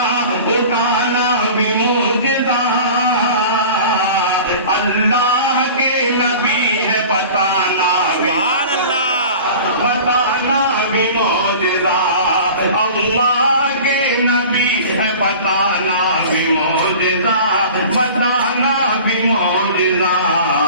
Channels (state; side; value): inverted; both; correlation -0.40